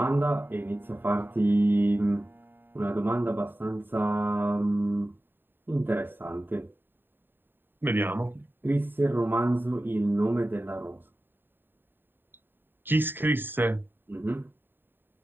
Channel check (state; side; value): late; left; 0.095 ms